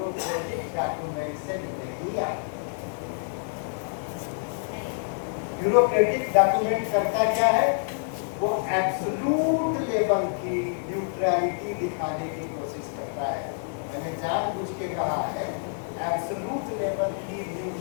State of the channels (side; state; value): right; silent; digital silence